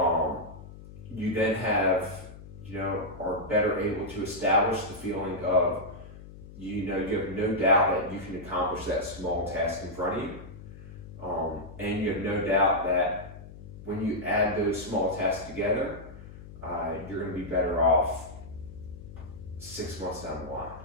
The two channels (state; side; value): noise; left; hum, 15 dB below the sound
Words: you then are better able to establish the feeling of, you have no doubt that you can accomplish that small task in front of you. And you have no doubt that when you add those small tasks together, you're going to be better off 6 months down the line,